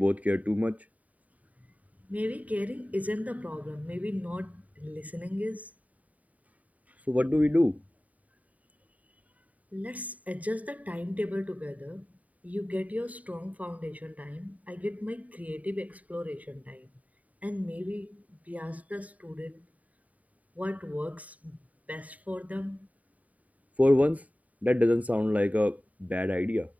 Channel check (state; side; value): late; left; 0.071 ms